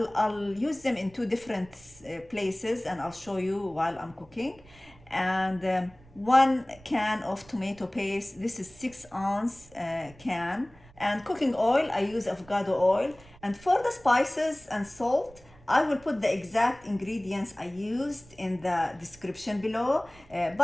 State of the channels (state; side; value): noise; right; rumble, 25 dB below the sound